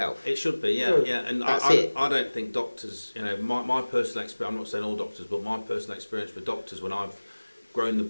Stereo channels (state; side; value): inverted; both; correlation -1.00